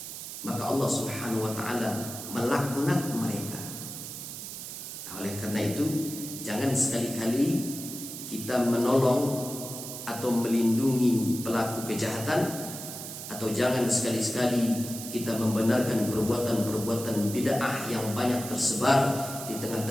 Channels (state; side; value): noise; right; hiss, 9 dB below the sound